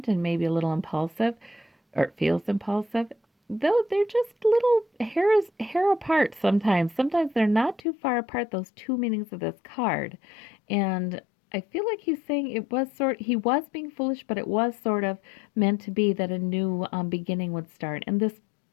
and maybe a little impulsive, or it feels impulsive, though they're just little hair apart sometimes. Sometimes they're not too far apart, those two meanings of this card. And I feel like he's saying he was being foolish, but it was sort of meant to be that a new beginning would start. And this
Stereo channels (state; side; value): drops out; right; at 7.8 s